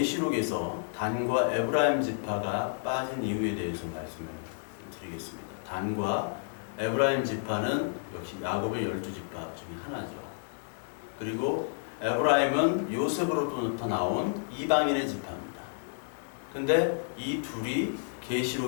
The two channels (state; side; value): silent; right; digital silence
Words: 단과 에브라임 지파가 빠진 이유에 대해서 말씀을 드리겠습니다. 단과 에브라임 지파는 역시 야곱의 12지파 중에 하나죠. 그리고 에브라임은 요셉으로부터 나온 이방인의 지파입니다. 근데 이 둘이